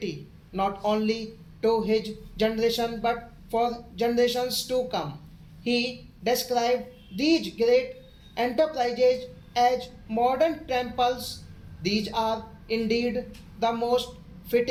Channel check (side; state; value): both; identical; correlation 1.00